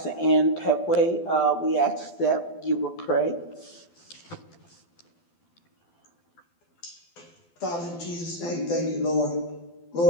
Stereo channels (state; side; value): late; right; 12 ms